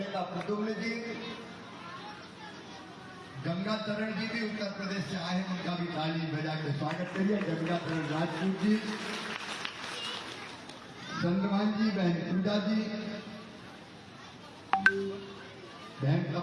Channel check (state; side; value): identical; both; correlation 1.00